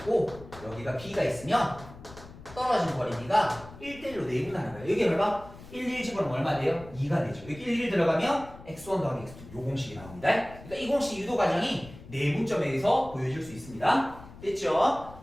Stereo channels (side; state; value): left; noise; rumble, 18 dB below the sound